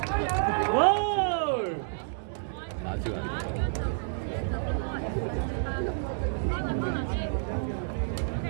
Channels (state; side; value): silent; left; digital silence